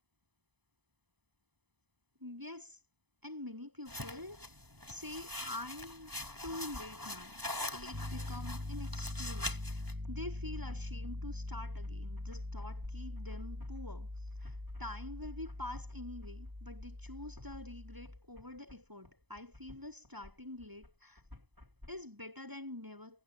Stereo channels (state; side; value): late; left; 0.99 ms